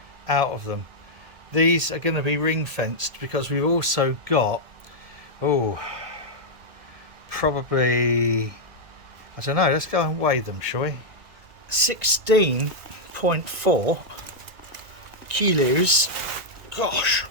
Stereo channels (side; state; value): left; late; 1.9 ms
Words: out of them. These are going to be ring fenced because we've also got, probably, I don't know, let's go and weigh them, shall we? 16.4 kilos. Gosh,